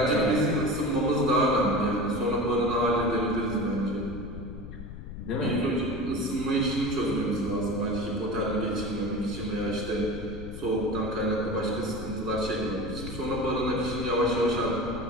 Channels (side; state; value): left; noise; rumble, 10 dB below the sound